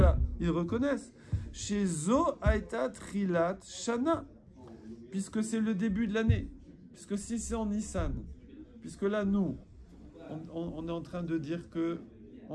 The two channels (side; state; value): both; identical; correlation 1.00